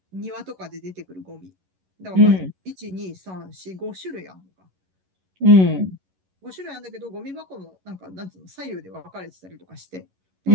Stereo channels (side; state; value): left; late; 11 ms